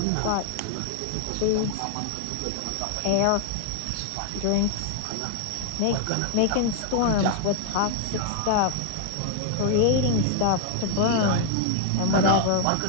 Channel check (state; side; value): different; both; correlation 0.00